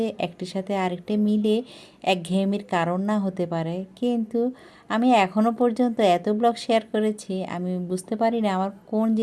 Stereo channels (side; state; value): both; identical; correlation 1.00